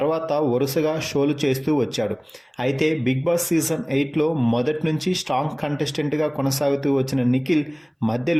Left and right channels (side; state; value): both; identical; correlation 1.00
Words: వరుసగా షోలు చేస్తూ వచ్చాడు. అయితే బిగ్ బాస్ సీజన్ 8లో మొదటి నుంచి స్ట్రాంగ్ కంటెస్టెంట్గా కొనసాగుతూ వచ్చిన నిఖిల్